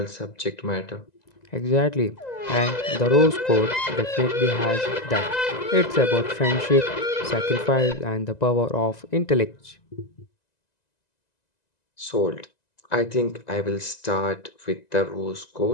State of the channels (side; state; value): right; late; 1.9 ms